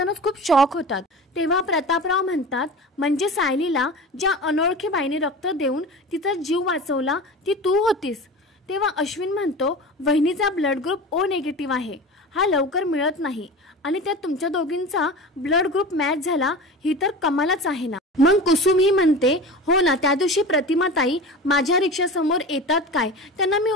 खूप शॉक होतात। तेव्हा प्रतापराव म्हणतात म्हणजे सायलीला ज्या अनोळखी बाईने रक्त देऊन तिचा जीव वाचवला ती तू होतीस? तेव्हा अश्विन म्हणतो वहिनीचा ब्लड ग्रुप ओ निगेटिव्ह आहे, हा लवकर मिळत नाही आणि त्यात तुमच्या दोघींचा ब्लड ग्रुप मॅच झाला, ही तर कमालच आहे ना। मग कुसुम ही म्हणते हो ना, त्या दिवशी प्रतिमाताई माझ्या रिक्षासमोर येतात काय, त्यांना मी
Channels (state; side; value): normal; both; correlation 0.32